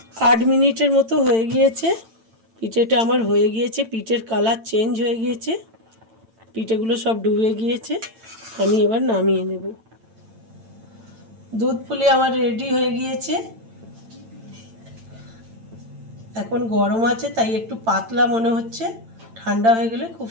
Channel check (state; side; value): late; left; 8.9 ms